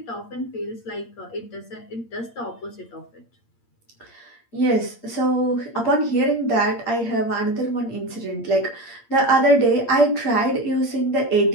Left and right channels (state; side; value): late; right; 8.6 ms